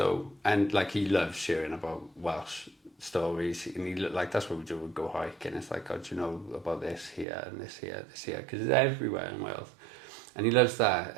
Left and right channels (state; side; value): drops out; left; at 7.2 s